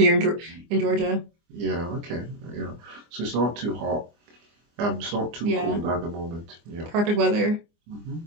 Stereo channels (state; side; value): late; left; 24 ms